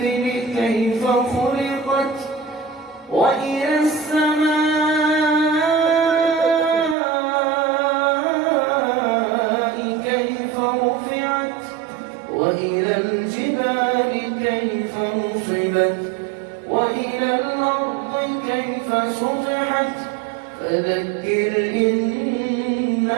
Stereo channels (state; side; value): drops out; left; at 7.0 s